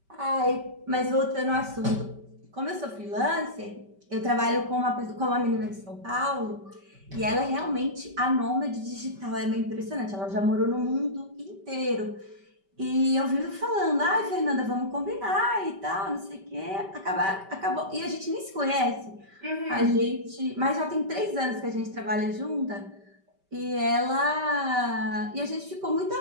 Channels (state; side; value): late; left; 5.2 ms